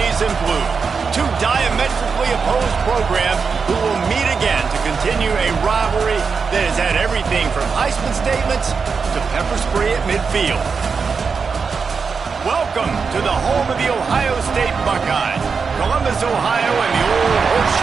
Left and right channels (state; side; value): quieter; left; 5.4 dB